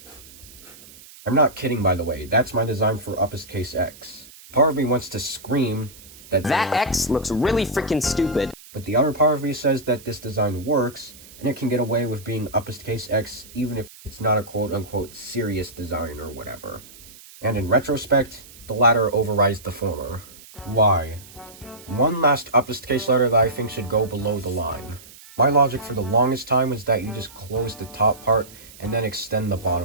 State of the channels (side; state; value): right; noise; hiss, 20 dB below the sound